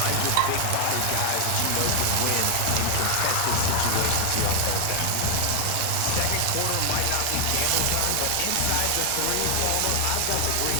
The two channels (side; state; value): both; different; correlation 0.00